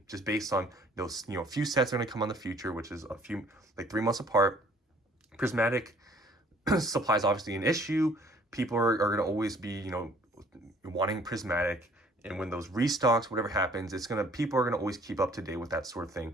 just based on those, a few sets are going to come on the future, which is a few, like 3 months apart. Prismatic supply is obviously an issue. People are going to always be, wanting Prismatic, and when those restocks, whatever happens, people are gonna always keep up to date with that sort of thing.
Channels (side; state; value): both; normal; correlation 0.56